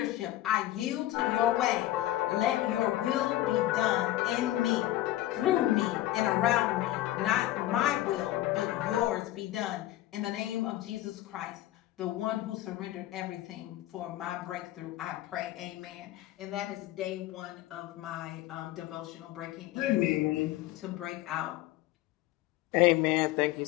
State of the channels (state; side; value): quieter; right; 15.1 dB